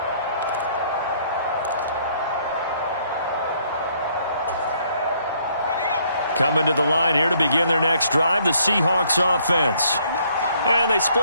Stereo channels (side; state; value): both; inverted; correlation -0.66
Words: Coming to the line here to begin their next drive, the Seahawks offense. And they